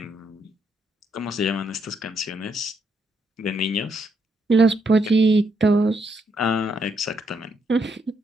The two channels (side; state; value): both; normal; correlation 0.76